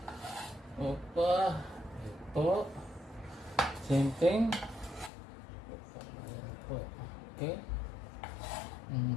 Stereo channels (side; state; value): right; drops out; at 5.1 s